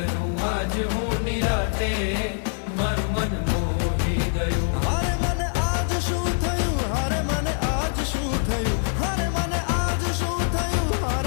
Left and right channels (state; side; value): silent; right; digital silence